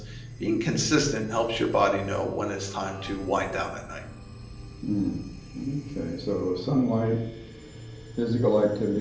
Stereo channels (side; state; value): both; identical; correlation 1.00